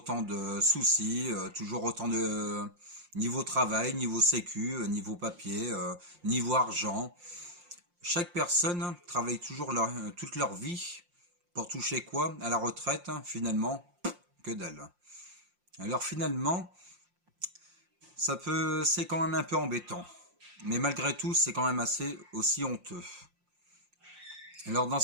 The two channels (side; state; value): left; late; 5.7 ms